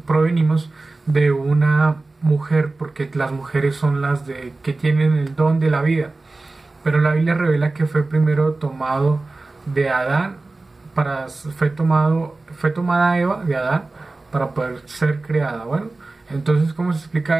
de una mujer, porque las mujeres son las que tienen el don de la vida. Pero la Biblia revela que fue primero tomado de Adán, fue tomada Eva de Adán para poder ser creada. Bueno, entonces, ¿cómo se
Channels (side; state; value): left; quieter; 3.3 dB